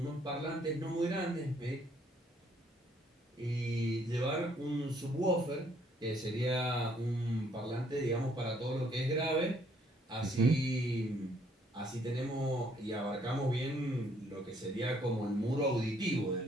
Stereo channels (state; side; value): normal; both; correlation 0.66